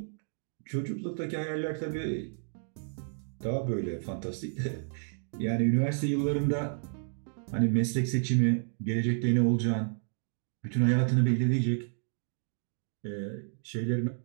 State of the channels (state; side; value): silent; left; digital silence